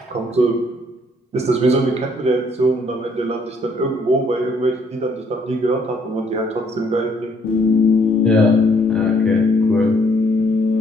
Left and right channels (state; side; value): normal; both; correlation 0.65